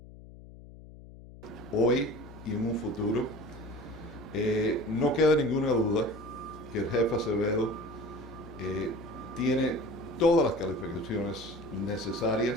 hoy y en un futuro. No queda ninguna duda que el jefe Acevedo tiene todas las calificaciones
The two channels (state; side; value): noise; left; hum, 18 dB below the sound